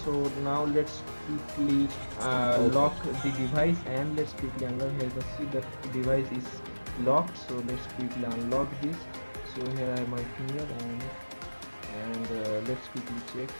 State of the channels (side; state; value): both; inverted; correlation -1.00